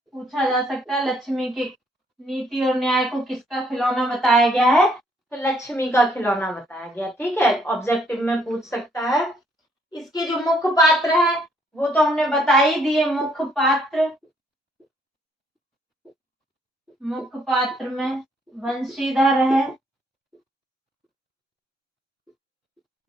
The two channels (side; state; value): both; normal; correlation 0.68